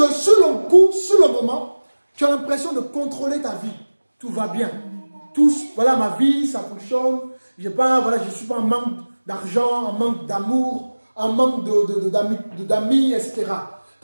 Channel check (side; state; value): both; inverted; correlation -1.00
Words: sur le coup, sur le moment, tu as l'impression de contrôler ta vie. Tout va bien. Tout, voilà ma vie, ça fonctionne. Je ne suis pas en manque d'argent, en manque d'amour, en manque d'amis, etc.